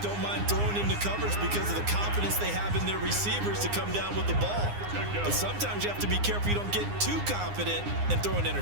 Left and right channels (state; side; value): late; left; 9.7 ms